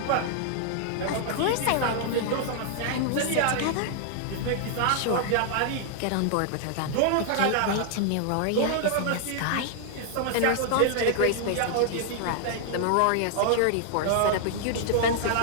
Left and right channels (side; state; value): both; different; correlation 0.00